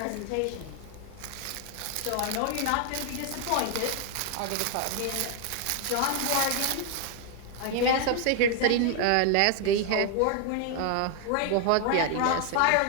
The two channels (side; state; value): both; different; correlation 0.00